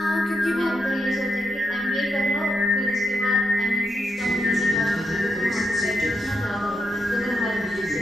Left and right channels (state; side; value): normal; both; correlation 0.83